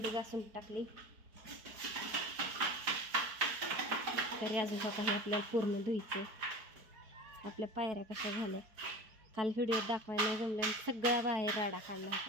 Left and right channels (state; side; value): late; left; 4.6 ms